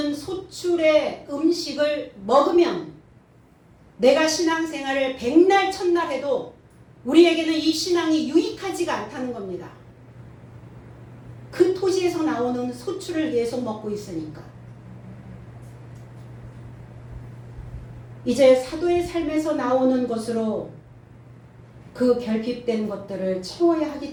소출의 음식을 먹으면 내가 신앙생활을 백날 천날 해도 우리에게는 이 신앙이 유익하지가 않다는 겁니다. 그 토지에서 나오는 소출을 계속 먹고 있으니까. 이제 사도의 삶에서 나오는 것으로 그 결핍된 것들을 채워야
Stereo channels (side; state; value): both; identical; correlation 1.00